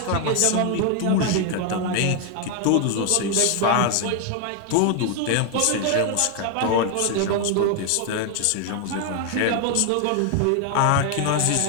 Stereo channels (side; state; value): both; different; correlation 0.01